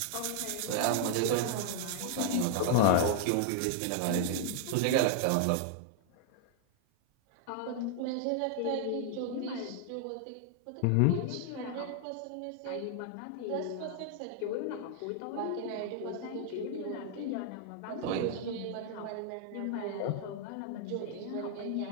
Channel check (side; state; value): both; different; correlation 0.00